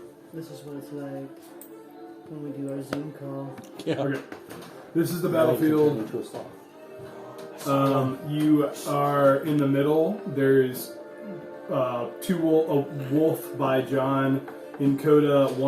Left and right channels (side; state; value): both; identical; correlation 1.00